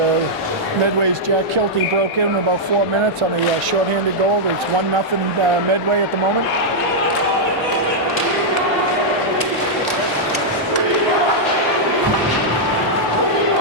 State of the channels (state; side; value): normal; both; correlation -0.06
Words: Medway's Jack Kilty broke in about 4 minutes on a short-handed goal. It's 1-0 Medway at the moment.